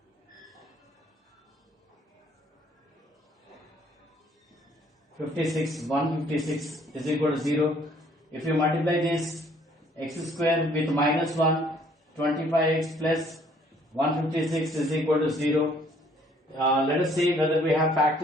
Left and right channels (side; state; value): both; normal; correlation 0.61